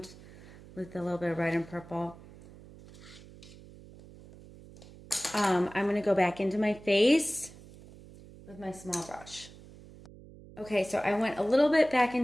with a little bit of red and purple. I'm going to go back into my face with my small brush. Okay, so I went a little bit back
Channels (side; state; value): right; noise; hum, 20 dB below the sound